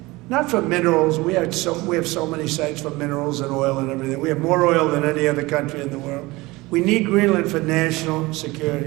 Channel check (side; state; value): left; quieter; 21.5 dB